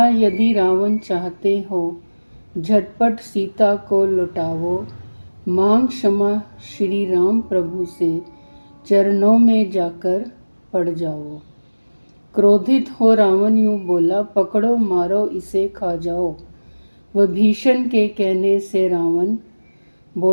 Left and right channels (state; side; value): inverted; both; correlation -1.00